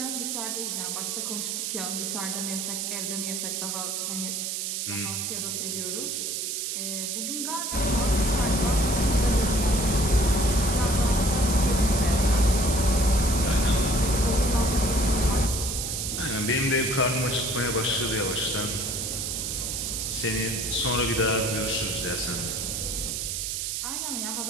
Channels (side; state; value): right; noise; hiss, 2 dB below the sound